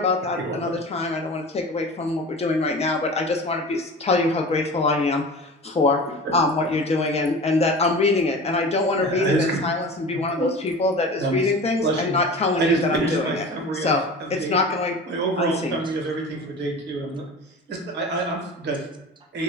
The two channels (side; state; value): both; normal; correlation 0.35